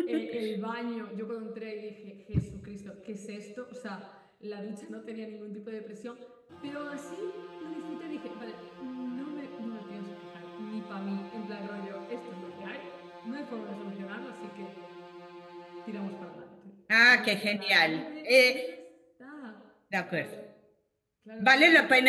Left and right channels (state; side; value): identical; both; correlation 1.00